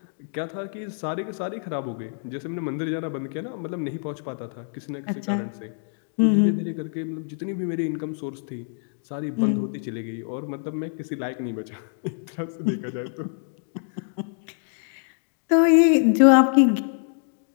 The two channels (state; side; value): silent; right; digital silence